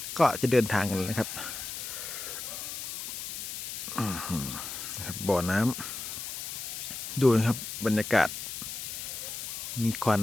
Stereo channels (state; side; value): noise; left; hiss, 6 dB below the sound